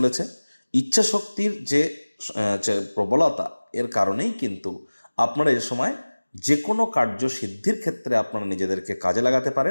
ইচ্ছা শক্তির যে প্রবলতা এর কারণেই কিন্তু আপনারা এ সময় যে কোনো কার্য সিদ্ধির ক্ষেত্রে আপনারা নিজেদেরকে কাজে লাগাতে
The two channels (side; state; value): both; inverted; correlation -1.00